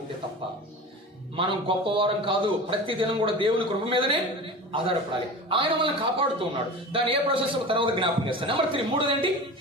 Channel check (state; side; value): normal; both; correlation 0.33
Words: ఉంటే తప్ప. మనం గొప్పవారం కాదు, ప్రతి దినం కూడా దేవుని కృప మీదనే ఆధారపడాలి. ఆయన మనల్ని కాపాడుతూ ఉన్నాడు. దాని ఏ ప్రాసెస్ తర్వాత జ్ఞాపకం చేస్తాను. నెంబర్ 3, మూడోదేంటి?